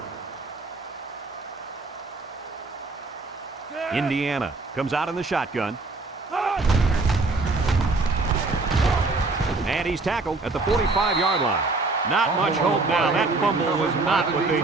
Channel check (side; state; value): left; quieter; 3.5 dB